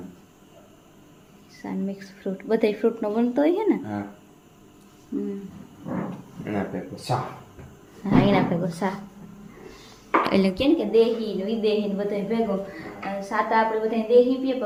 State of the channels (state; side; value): identical; both; correlation 1.00